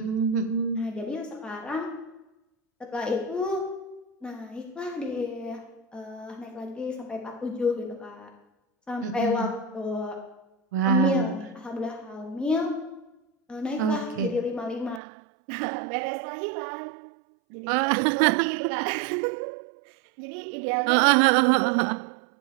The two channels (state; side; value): drops out; left; at 15.0 s